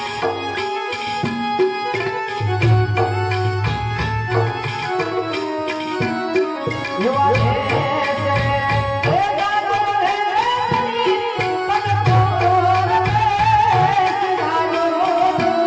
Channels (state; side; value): identical; both; correlation 1.00